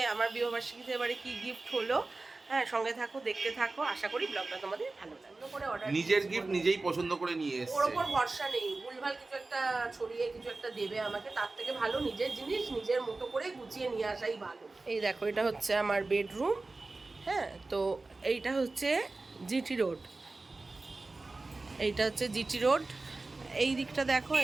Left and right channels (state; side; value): quieter; left; 3.4 dB